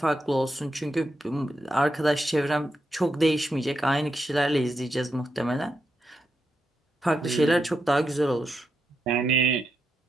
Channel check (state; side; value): normal; both; correlation 0.85